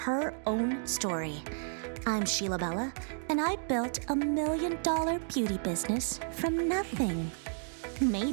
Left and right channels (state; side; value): silent; left; digital silence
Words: own story. I'm Sheila Bella, and I built $1 million beauty business from nothing.